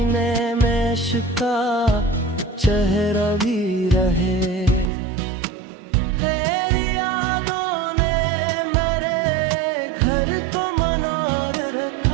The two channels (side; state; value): left; drops out; at 4.9 s